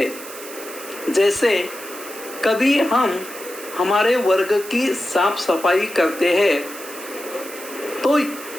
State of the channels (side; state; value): right; noise; hiss, 13 dB below the sound